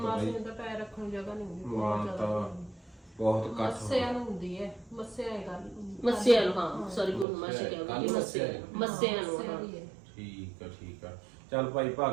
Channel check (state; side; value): drops out; left; at 7.2 s